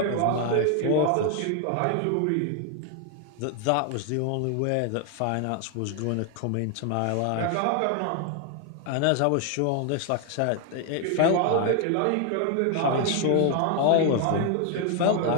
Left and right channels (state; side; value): different; both; correlation 0.00